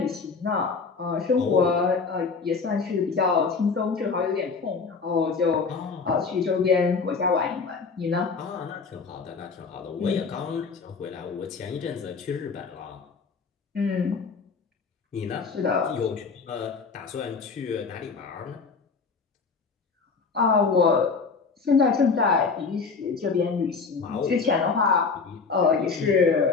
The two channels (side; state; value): right; quieter; 4.9 dB